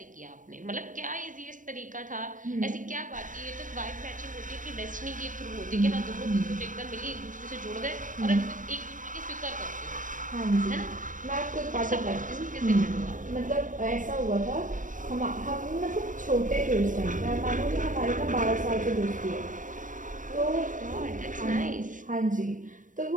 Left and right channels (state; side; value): late; left; 0.38 ms